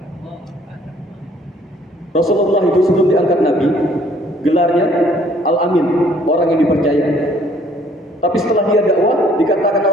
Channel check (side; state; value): both; normal; correlation 0.60